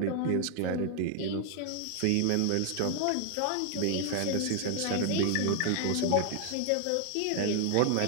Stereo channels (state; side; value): different; both; correlation 0.00